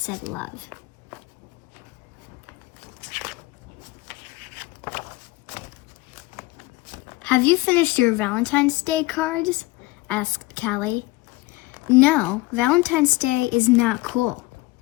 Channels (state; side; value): quieter; right; 21.1 dB